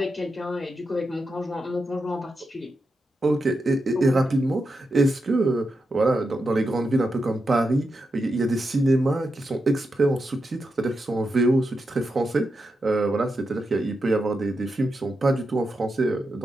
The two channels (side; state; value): both; normal; correlation 0.87